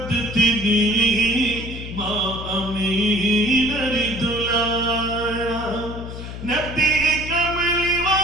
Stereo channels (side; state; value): left; noise; hum, 9 dB below the sound